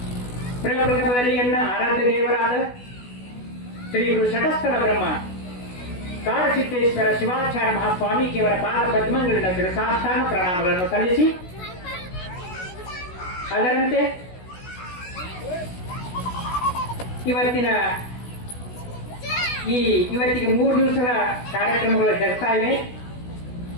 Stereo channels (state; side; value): late; right; 16 ms